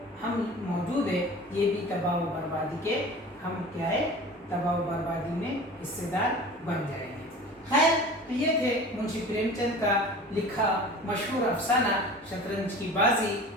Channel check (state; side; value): normal; both; correlation 0.39